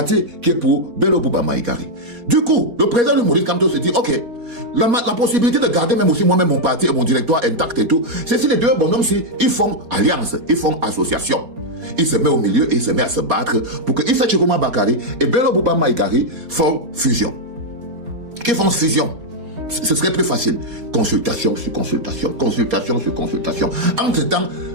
qui est pour Bello Bouba Maïgari. Du coup, le président de Maurice Kamto se dit, ok, la possibilité de garder même aussi moi-même mon parti et mon directoire intact et tout, c'est si les deux bonhommes-ci, ils font alliance, ils font association. Il se met au milieu et il se met à se battre pour que Issa Chiruma Bakari et Bello Bouba Maïgari font fusion. Qu'ils font fusion. Ce serait plus facile. Consultation sur consultation, consultation sur consultation. Entre-temps,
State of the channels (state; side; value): late; left; 4.3 ms